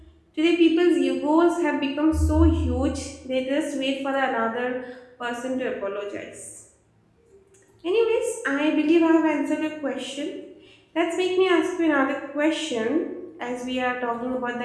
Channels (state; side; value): identical; both; correlation 1.00